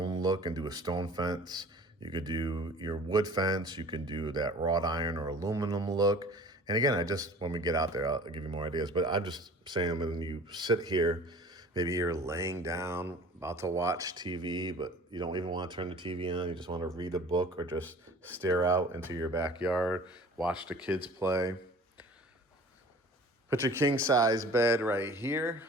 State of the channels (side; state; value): both; normal; correlation 0.46